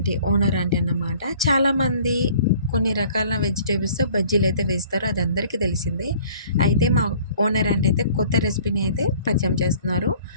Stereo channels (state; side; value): inverted; both; correlation -0.52